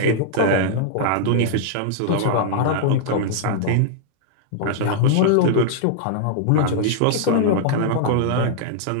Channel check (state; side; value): different; both; correlation -0.01